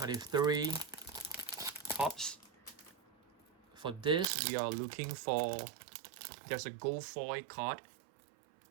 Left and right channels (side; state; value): left; drops out; at 4.3 s